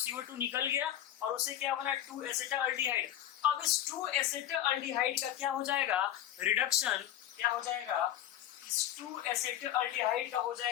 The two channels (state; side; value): quieter; right; 12.0 dB